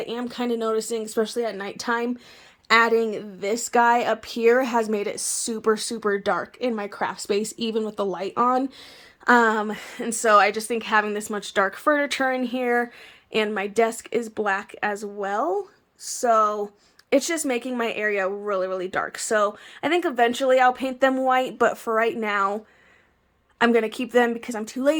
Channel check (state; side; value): identical; both; correlation 1.00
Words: am kind of noticing, especially at nighttime, adding this guy up here has made it super, super dark in my craft space, even with the light on. And so I just think having this much dark furniture in here, and my desk is black as well, so it's just making my area really, really dark. So I think eventually I'll paint them white, but for right now, I'm going to keep them because I'm too